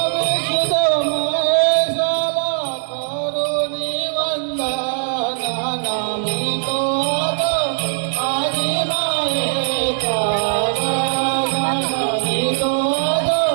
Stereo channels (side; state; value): left; silent; digital silence